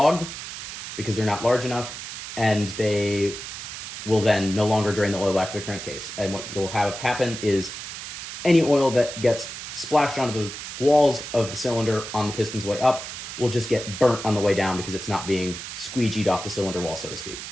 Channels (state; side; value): noise; right; hiss, 9 dB below the sound